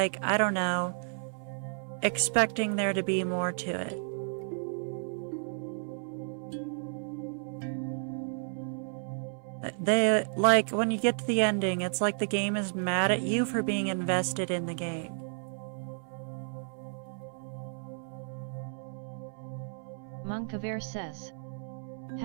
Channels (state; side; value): silent; left; 56 dB below the other